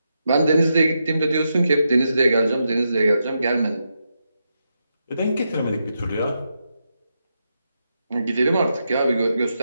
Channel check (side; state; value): both; inverted; correlation -0.85